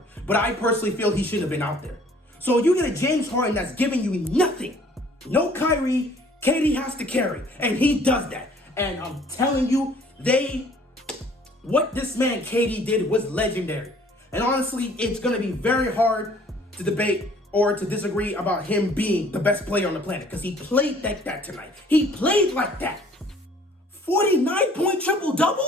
But I personally feel he shouldn't have been out there. So you get a James Harden that's giving you nothing. No Kyrie, KD has to carry, and he does that. And I'm telling you, what this man KD did was legendary. And honestly, it's going to be very hard to debate or to disagree about him being the best player on the planet because he played like that tonight. He played like that. 49-point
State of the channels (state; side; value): normal; both; correlation 0.56